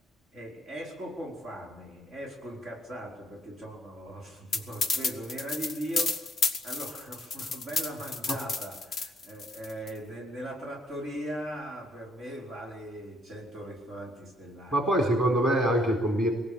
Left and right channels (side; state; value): both; normal; correlation 0.66